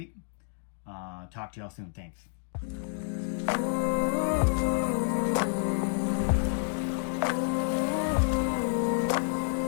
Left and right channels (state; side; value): silent; right; 57 dB below the other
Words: Talk to y'all soon. Thanks.